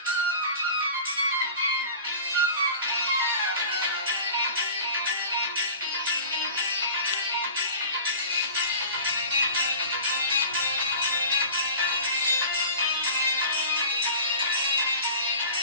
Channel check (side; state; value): both; inverted; correlation -0.40